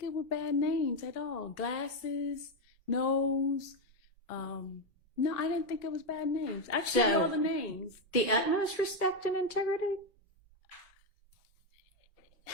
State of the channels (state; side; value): normal; both; correlation 0.06